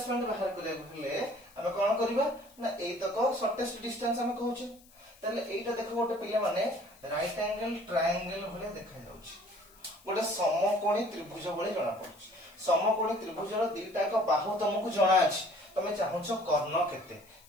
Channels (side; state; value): left; noise; hiss, 26 dB below the sound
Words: बाहर करे भले हम कोन करबा ना ए तक शॉर्टेस्ट डिस्टेंस हम कहउछ ताले एटा देखो गोटे पिले माने राइट एंगल ट्रायंगल भले देखा जाउछ गोटे समकोणी त्रिभुज भले जणा पड़छ समकोणी त्रिभुजर दुईटा का बाहु तुमको जणा अछि तमे चाहछो कर्ण केते